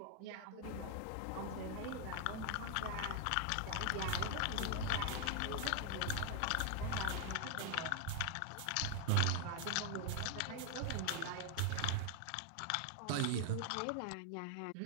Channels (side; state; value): both; different; correlation 0.00